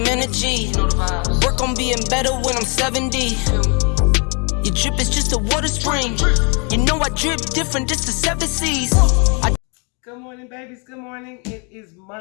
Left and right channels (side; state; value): right; quieter; 34.5 dB